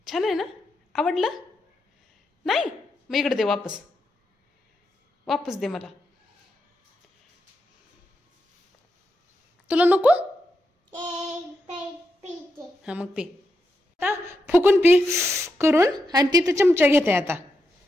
छान आहे ना? आवडलं? नाही मग इकडे दे. वापस दे मला. तुला नको? हा मग पी. आता फुकून पी करून. आणि तिथं चमचा घेते आता.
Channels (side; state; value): both; normal; correlation 0.85